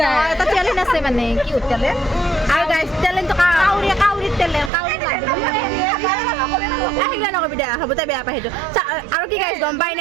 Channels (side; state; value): left; drops out; at 4.7 s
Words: এটা টেলেণ্ট আছে মানে কি টেলেণ্ট আৰু গাইজ টেলেণ্টটো কাউৰীত টেলেণ্ট কাউৰী নকবি দে হ'ব তাই বেয়া পাই সেইটো। আৰু কি গাইজ গম পাই